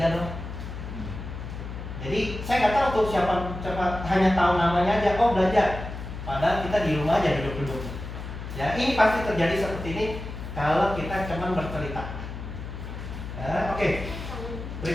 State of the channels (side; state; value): left; noise; hum, 8 dB below the sound